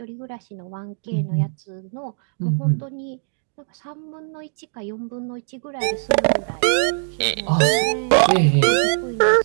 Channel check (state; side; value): silent; left; digital silence